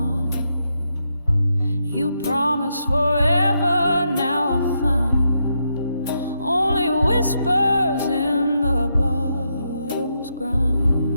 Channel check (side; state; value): both; inverted; correlation -0.81